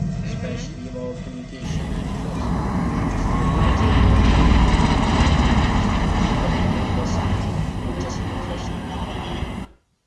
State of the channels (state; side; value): identical; both; correlation 1.00